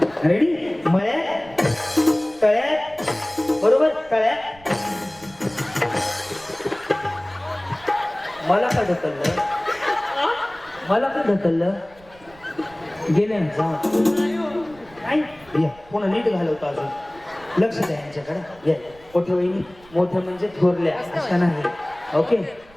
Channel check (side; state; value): right; noise; rumble, 25 dB below the sound